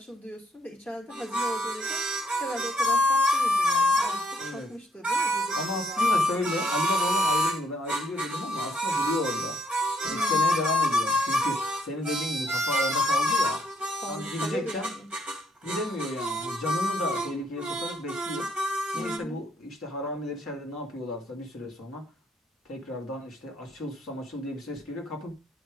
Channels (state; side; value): normal; both; correlation 0.70